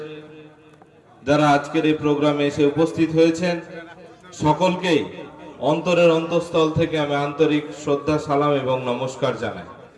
যারা আজকের এই প্রোগ্রামে এসে উপস্থিত হয়েছেন, সকলকেই অন্তরের অন্তঃস্থল থেকে আমি আন্তরিক শ্রদ্ধা, সালাম এবং নমস্কার জানাই।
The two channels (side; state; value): both; identical; correlation 1.00